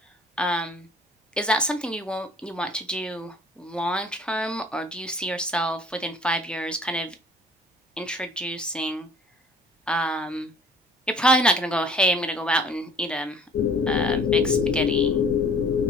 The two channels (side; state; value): both; normal; correlation 0.52